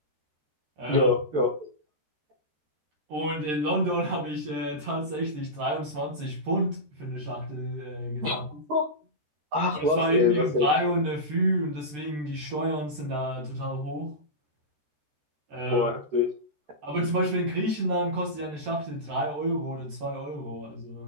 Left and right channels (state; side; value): late; left; 13 ms